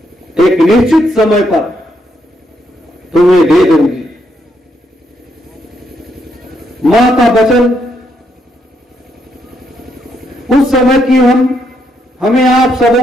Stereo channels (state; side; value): normal; both; correlation 0.77